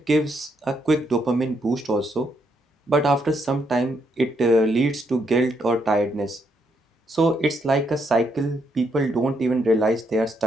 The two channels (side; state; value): both; normal; correlation 0.76